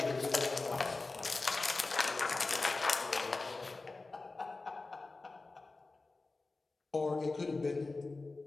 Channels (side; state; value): right; quieter; 3.5 dB